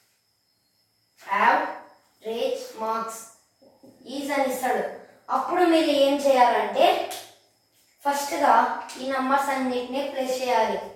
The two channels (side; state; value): both; identical; correlation 1.00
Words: ఈజ్ అని ఇస్తాడు. అప్పుడు మీరు ఏం చేయాలంటే ఫస్ట్గా ఈ నంబర్స్ అన్నిటిని ప్లస్